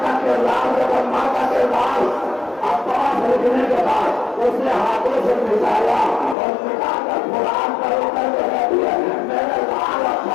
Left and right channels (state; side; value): drops out; right; at 6.4 s